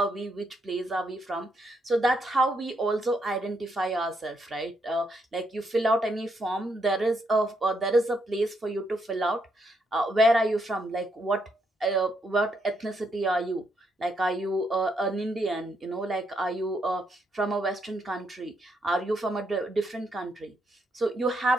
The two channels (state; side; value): normal; both; correlation 0.77